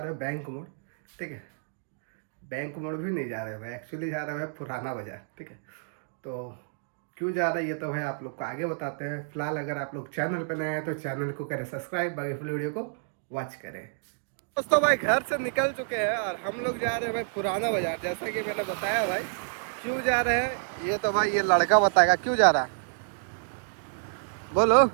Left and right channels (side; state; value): left; silent; digital silence